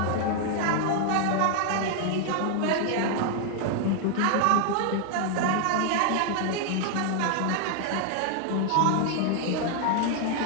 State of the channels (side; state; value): both; different; correlation 0.00